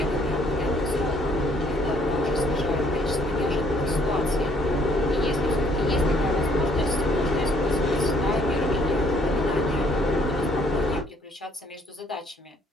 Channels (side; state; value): both; normal; correlation 0.64